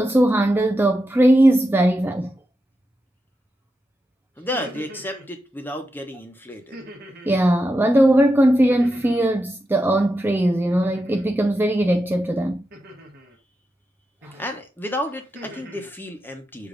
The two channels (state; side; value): normal; both; correlation 0.88